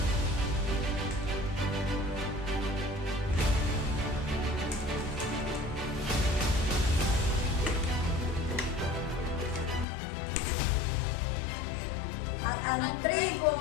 At ang tribong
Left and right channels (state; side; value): drops out; right; at 9.9 s